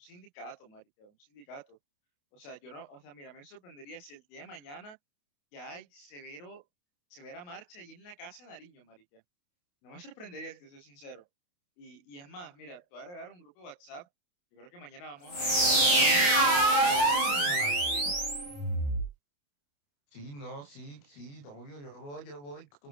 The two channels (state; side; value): late; right; 28 ms